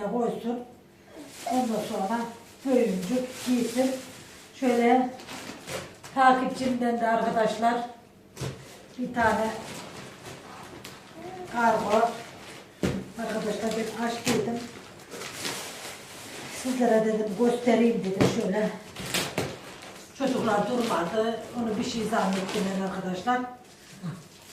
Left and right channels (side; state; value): both; identical; correlation 1.00